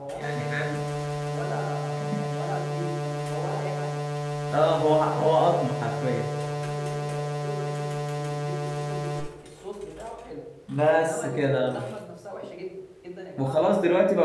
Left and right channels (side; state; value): both; identical; correlation 1.00